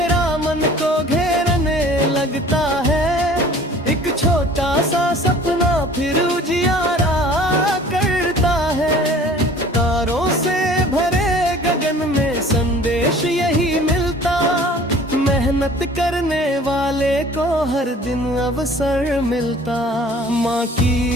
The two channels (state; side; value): normal; both; correlation 0.49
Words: मन को घेरने लगता है, एक छोटा सा सपना फिर उजियारा करता है। तारों से भरे गगन में संदेश यही मिलता, मेहनत करने वाले को हर दिन अवसर मिलता। माँ